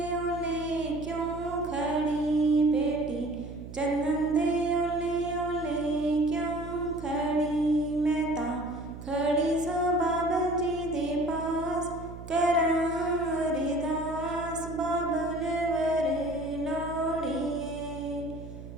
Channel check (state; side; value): noise; right; hum, 12 dB below the sound